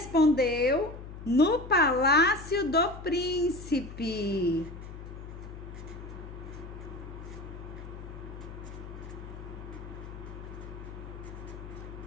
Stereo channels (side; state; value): left; noise; hum, 11 dB below the sound